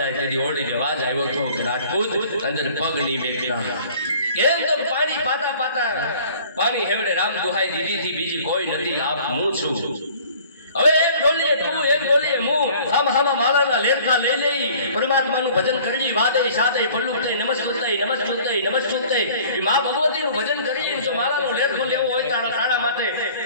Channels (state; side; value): inverted; both; correlation -0.51